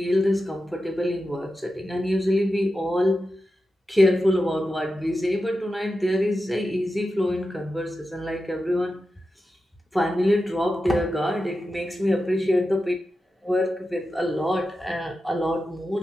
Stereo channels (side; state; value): both; normal; correlation 0.91